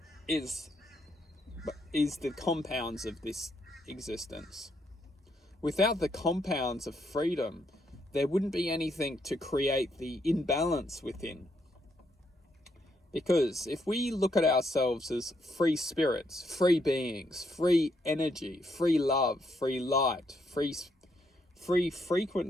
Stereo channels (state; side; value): normal; both; correlation 0.76